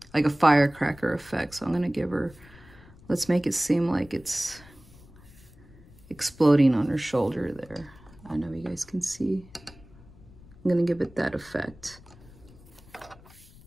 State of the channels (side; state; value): left; noise; rumble, 23 dB below the sound